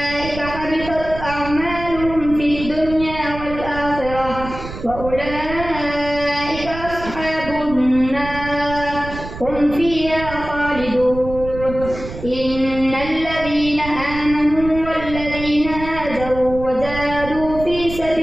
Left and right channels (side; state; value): right; noise; rumble, 10 dB below the sound